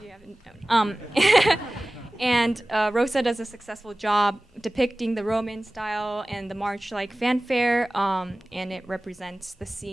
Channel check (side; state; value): both; normal; correlation 0.97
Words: haven't known. And Rosa does a successful job depicting the Roman style and the march-like fanfare, and it represents the